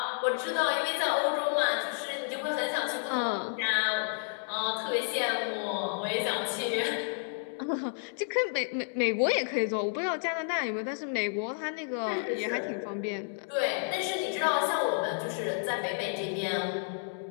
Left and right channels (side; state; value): right; silent; digital silence